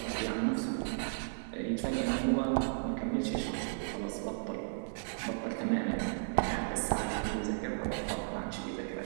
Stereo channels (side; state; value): left; silent; 55 dB below the other